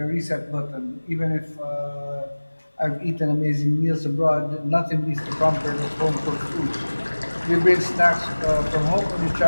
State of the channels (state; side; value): inverted; both; correlation -1.00